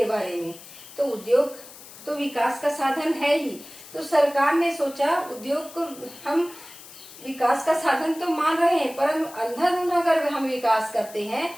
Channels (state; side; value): noise; left; hiss, 18 dB below the sound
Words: बारे में। तो उद्योग तो विकास का साधन है ही, तो सरकार ने सोचा उद्योग को हम विकास का साधन तो मान रहे हैं, पर अंधाधुंध अगर हम विकास करते हैं